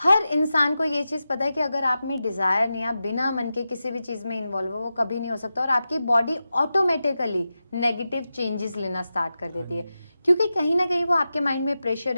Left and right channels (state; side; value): inverted; both; correlation -0.92